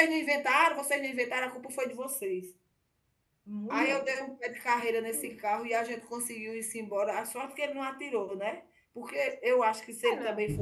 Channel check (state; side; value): identical; both; correlation 1.00